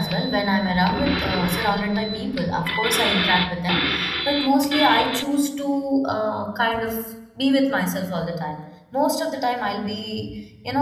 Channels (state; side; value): identical; both; correlation 1.00